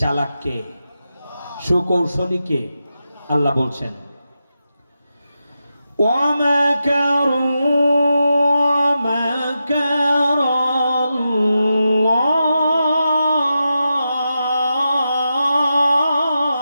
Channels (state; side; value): inverted; both; correlation -0.89